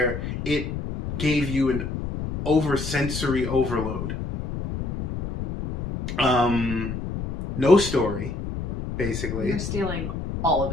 it gave you an sensory overload. No story, basically. You're stealing all of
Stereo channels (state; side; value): noise; left; rumble, 5 dB below the sound